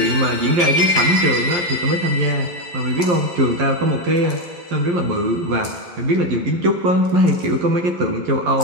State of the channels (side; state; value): left; late; 11 ms